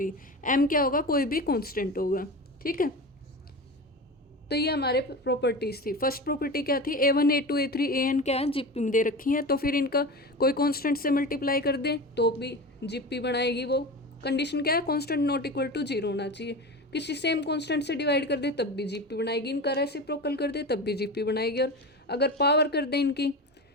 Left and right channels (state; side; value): normal; both; correlation 0.28